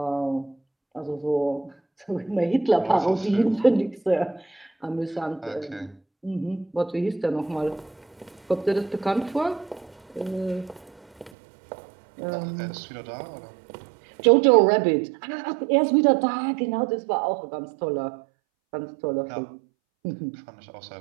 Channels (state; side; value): drops out; left; at 11.3 s